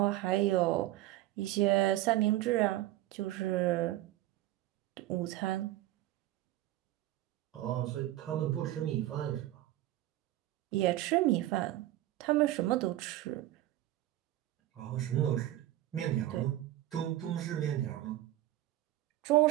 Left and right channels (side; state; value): left; quieter; 15.0 dB